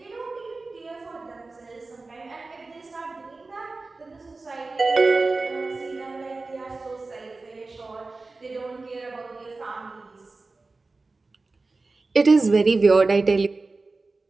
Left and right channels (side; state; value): left; quieter; 3.6 dB